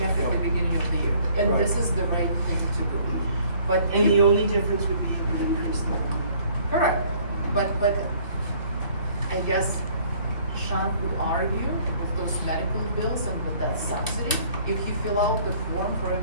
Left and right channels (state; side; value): inverted; both; correlation -0.58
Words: at the beginning of the year. And Right. this is the right thing to do. But And the only difference would be an increase in the correct, but I guess Sean could argue with those medical bills and with that subsidy, if you fill out the form for